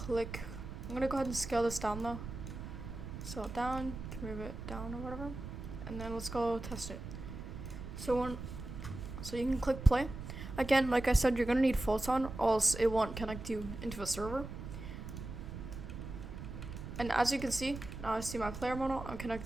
gonna go ahead and scale this down though. So down, can move it down or whatever, and then let's go test it. So you can click play. Again, like I said, you're gonna need photon, or else it won't connect you into a server. And as you can see, now I see my player model. I'm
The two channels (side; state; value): right; noise; rumble, 9 dB below the sound